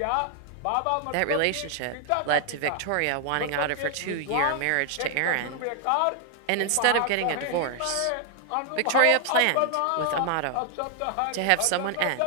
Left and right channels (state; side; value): different; both; correlation 0.00